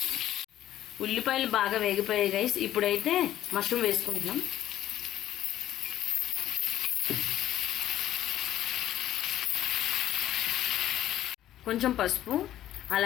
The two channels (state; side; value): quieter; right; 12.7 dB